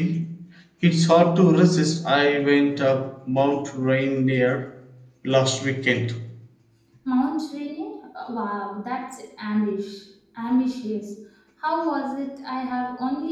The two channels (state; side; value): identical; both; correlation 1.00